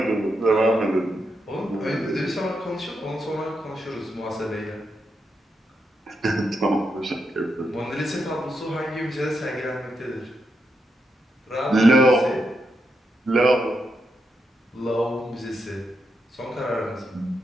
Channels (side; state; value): both; normal; correlation 0.83